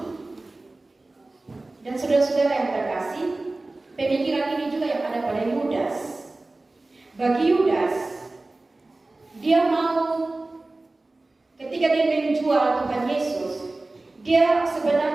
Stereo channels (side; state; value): left; quieter; 3.1 dB